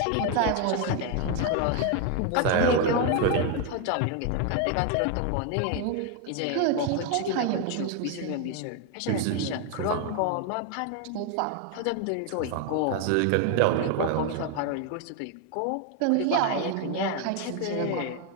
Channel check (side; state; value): both; different; correlation 0.01